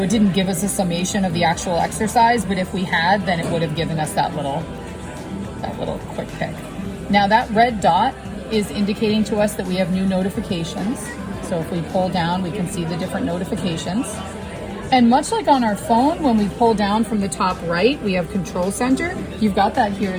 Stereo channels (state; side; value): identical; both; correlation 1.00